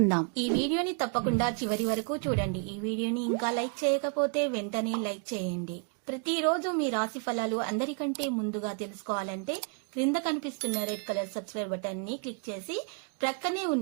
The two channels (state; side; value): quieter; left; 39.7 dB